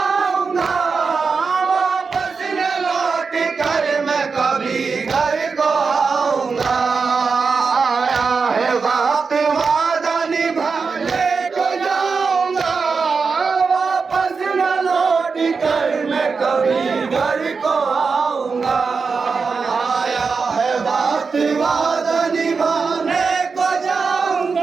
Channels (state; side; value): quieter; left; 5.0 dB